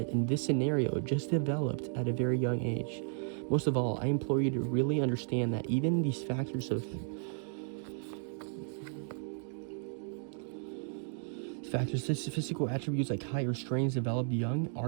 this scenario, just developed at a very young age. Most of all, I implore you to really understand that even these factors of physical attributes like height or strengths developed young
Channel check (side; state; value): left; silent; 55 dB below the other